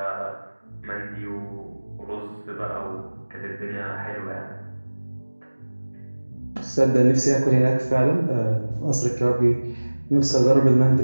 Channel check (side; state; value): both; inverted; correlation -1.00